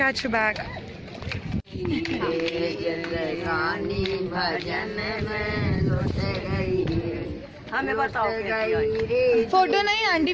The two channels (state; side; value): identical; both; correlation 1.00